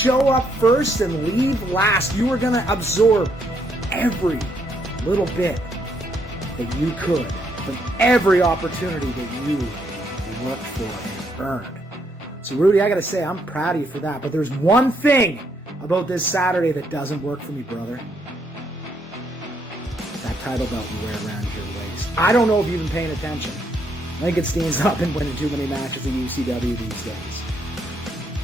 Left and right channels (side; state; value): both; normal; correlation 0.74